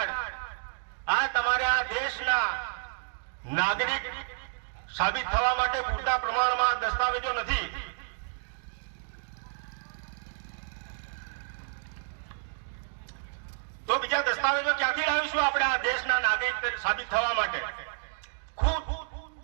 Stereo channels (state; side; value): silent; left; digital silence